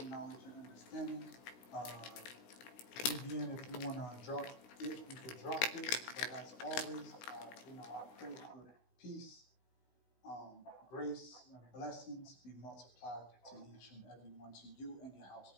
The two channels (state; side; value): late; right; 16 ms